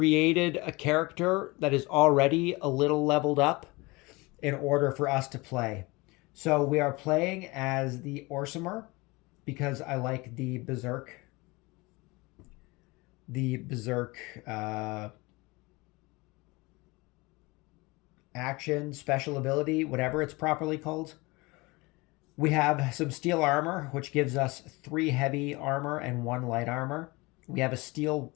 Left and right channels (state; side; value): quieter; right; 24.0 dB